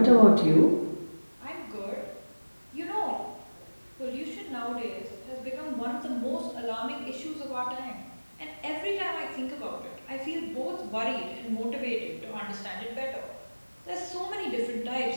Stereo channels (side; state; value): both; inverted; correlation -1.00